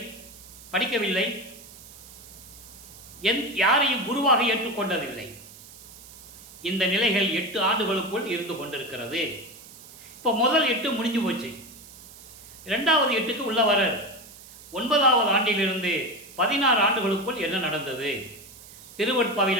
படிக்கவில்லை, யாரையும் குருவாக ஏற்றுக்கொண்டதில்லை. இந்த நிலைகள் 8 ஆண்டுகளுக்குள் இருந்து கொண்டிருக்கிறது. இப்போ முதல் 8 முடிஞ்சு போச்சு. 2வது 8க்கு உள்ள வரார். 9வது ஆண்டிலிருந்து 16 ஆண்டுகளுக்குள் என்ன நடந்தது?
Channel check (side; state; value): right; noise; hiss, 19 dB below the sound